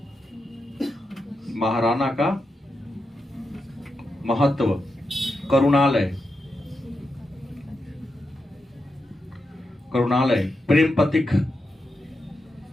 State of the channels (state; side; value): normal; both; correlation 0.87